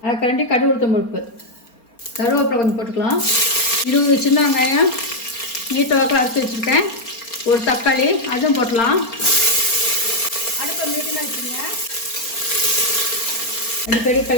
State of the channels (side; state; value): right; late; 4.3 ms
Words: 1/2 கரண்டி கடுகு உளுத்தம் பருப்பு, கருவேப்பிலை கொஞ்சம் போட்டுக்கலாம். 20 சின்ன வெங்காயம் நீட்ட வாக்கில் அரைச்சி வச்சுருக்கேன். ஒரு தக்காளி அதுவும் போட்டலாம். அடுப்பை மீடியமாக வச்சுருங்க. அடிக்கடி